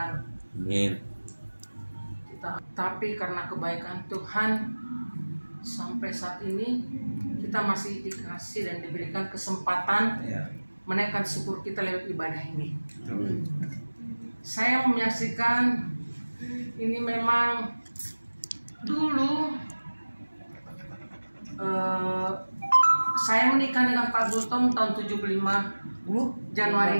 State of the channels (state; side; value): inverted; both; correlation -1.00